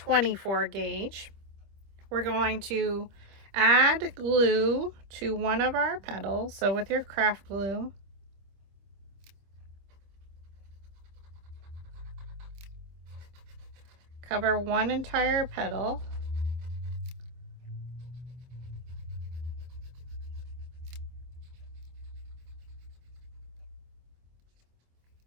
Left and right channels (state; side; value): late; left; 25 ms